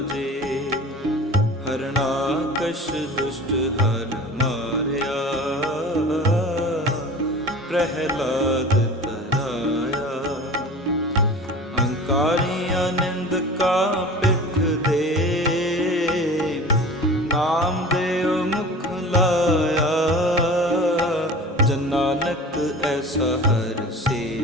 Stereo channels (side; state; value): both; normal; correlation 0.38